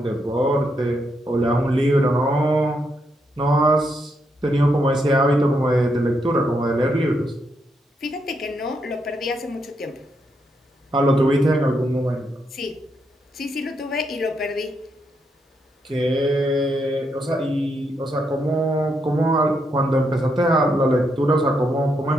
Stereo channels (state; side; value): normal; both; correlation 0.79